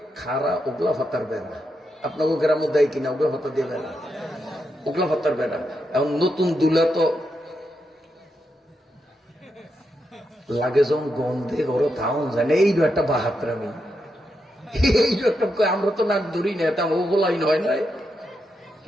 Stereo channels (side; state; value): both; normal; correlation 0.84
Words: খাড়া ওগলা ফাতার বেড়া, আপনাকে গ্রামে দেয় কিনা ওগুলো ভাতা দিয়ে বেড়া, ওগুলো ভাতার বেড়া। এখন নতুন দুলা তো লাগে যখন গন্ধে ঘরে থাউন যায় না, এইটা একটা বাহাত্রামি, এইটা একটা। আমরা তো নাক ধরি না, এটা ওগুলাই নয় নয়